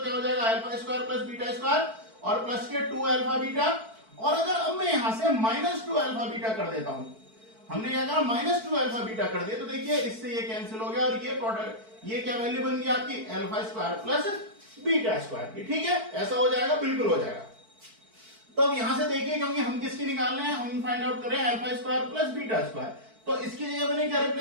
हो जाएगा, alpha square plus beta square और प्लस के 2 अल्फा बीटा। और अगर अब मैं यहां से माइनस 2 अल्फा बीटा कर देता हूं, हमने क्या कहा माइनस 2 अल्फा बीटा कर दिया, तो देखिए इससे ये कैंसिल हो गया और ये प्रोडक्ट, ये क्या वैल्यू बन गई आपकी, alpha square plus beta square की, ठीक है, ऐसा हो जाएगा, बिल्कुल हो जाएगा। तो अब यहां से देखिए, क्योंकि हम किसकी निकालने हैं, हम फाइंड आउट करें alpha square plus beta square, तो इसकी जगह मैंने क्या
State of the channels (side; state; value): left; late; 4.5 ms